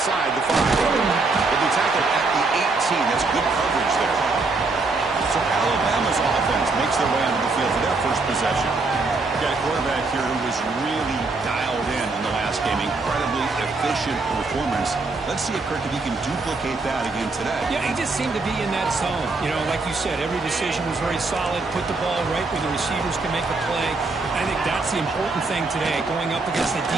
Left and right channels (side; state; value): left; quieter; 3.7 dB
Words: the 5. They'll be tackled at the 18. That's good coverage there. So Alabama's offense makes their way onto the field for their first possession. Got a quarterback here who was really dialed in the last game. Incredibly efficient performance. Let's see if Kirk, if he can duplicate that again today. Yeah, he just seemed to be in that zone. You know, like you said, every decision was very solid. Put the ball right where the receivers can make a play. I think that's the important thing today. Going up against a